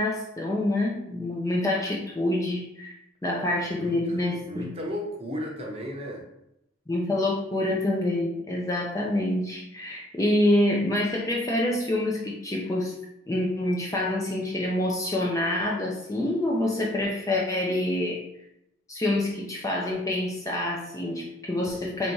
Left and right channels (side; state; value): both; normal; correlation 0.62